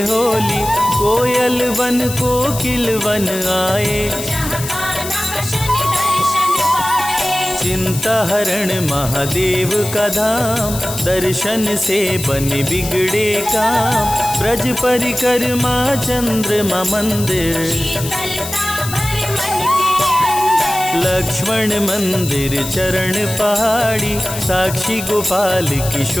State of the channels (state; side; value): noise; left; hiss, 8 dB below the sound